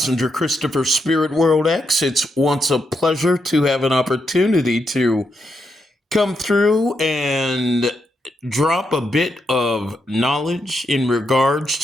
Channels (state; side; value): normal; both; correlation 0.82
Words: Christopher Spirit World X. It's once a pleasure to have an opportunity to come through and drop a bit of knowledge in regards